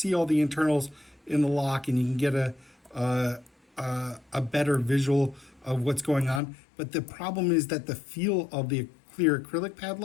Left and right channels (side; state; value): right; drops out; at 6.4 s